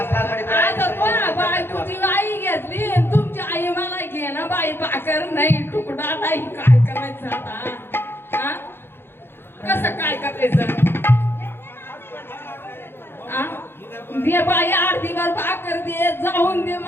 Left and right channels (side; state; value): right; late; 0.11 ms